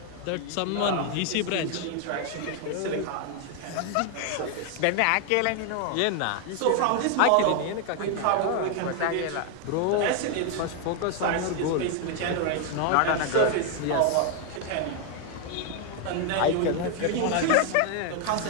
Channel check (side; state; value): both; different; correlation 0.01